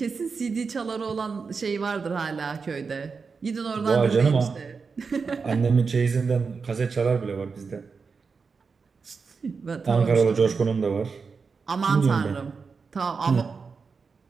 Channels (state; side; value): quieter; left; 5.1 dB